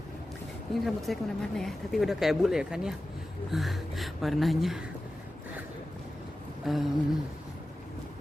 ini rambut saya kemana-mana ya, tapi udah kayak bule ya kan ya warnanya.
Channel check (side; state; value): both; normal; correlation 0.94